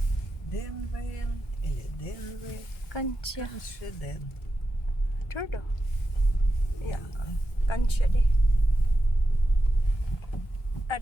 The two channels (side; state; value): right; late; 1.3 ms